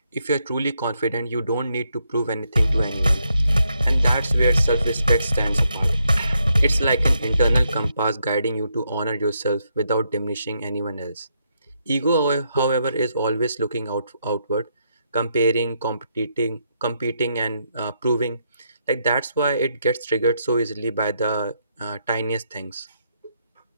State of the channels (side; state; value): both; inverted; correlation -0.78